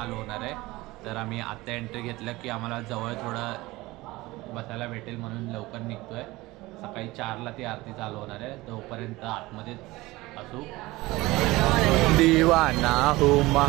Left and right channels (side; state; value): left; quieter; 20.0 dB